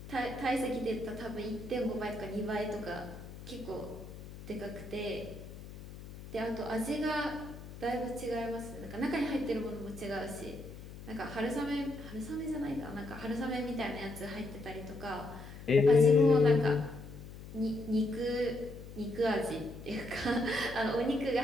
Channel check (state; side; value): noise; left; hum, 13 dB below the sound